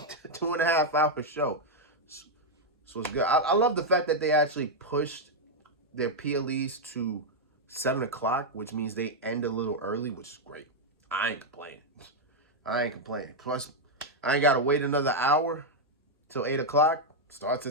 hour show. So it's good. I love the fact that they actually pushed their PLEs to 7 o'clock, which means they end a little early, which is great. I ain't complaining. I ain't complaining. Plus, I ain't got to wait another hour till 8 o'clock. Starts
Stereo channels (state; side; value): normal; both; correlation -0.01